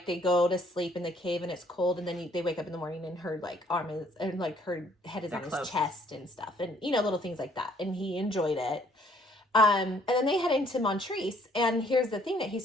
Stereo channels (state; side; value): normal; both; correlation 0.63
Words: they go to sleep in the cave and it's cold, and then they wake up in the morning and her like arm is, and like her head is on his chest and stuff, and little things like that, and he enjoyed it. And then they head into Montrese, and here's the thing that he